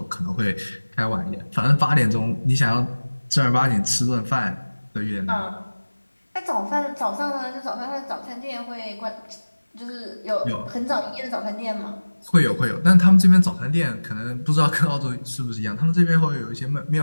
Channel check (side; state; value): both; inverted; correlation -1.00